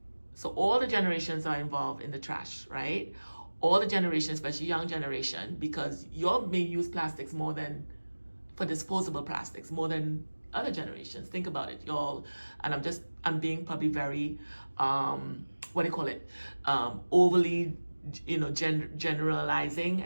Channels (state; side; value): inverted; both; correlation -1.00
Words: So all the generations are involved in the trash, right? All the generations, especially young generation, because y'all may use plastics more than, for disposable plastics, more than other generations. Think about it, y'all. And I'm being probably very, overly, you know, generalizing